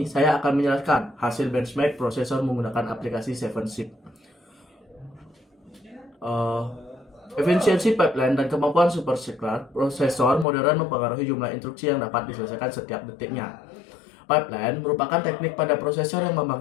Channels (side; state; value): right; drops out; at 10.5 s